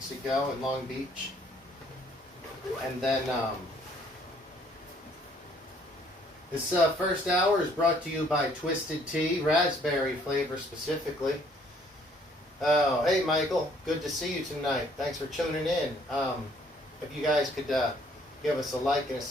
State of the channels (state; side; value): normal; both; correlation 0.62